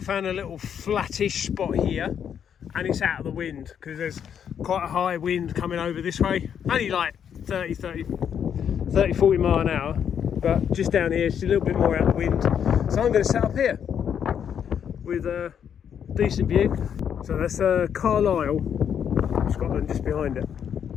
a little flattish spot here, and it's out of the wind because there's quite a high wind coming over this way. Only like 30, 40 mile an hour. But just down here, it's a little bit more out of the wind. So I'm going to set up here with a decent view. So that's Carlisle, Scotland, just behind it,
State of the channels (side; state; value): right; quieter; 8.3 dB